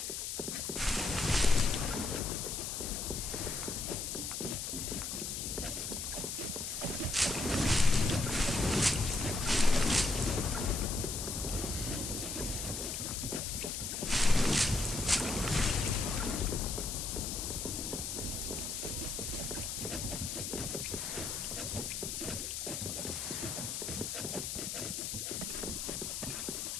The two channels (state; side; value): noise; left; hiss, 3 dB below the sound